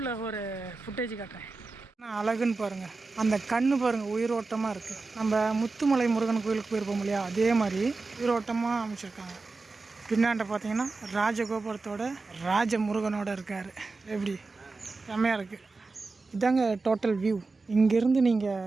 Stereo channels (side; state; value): left; quieter; 3.8 dB